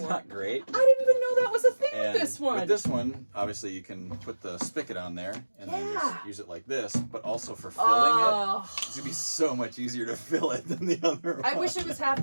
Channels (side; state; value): both; inverted; correlation -1.00